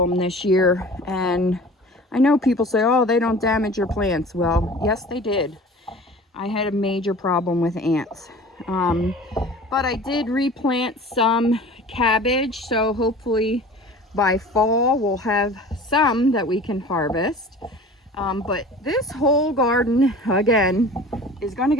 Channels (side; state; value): both; normal; correlation 0.41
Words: this year, and I know people say, oh, they don't damage your plants. Well, yes, they did. I had a major problem with ants. But I did replant some cabbage, so hopefully by fall we'll have some that we can harvest. But this whole garden, again, is going to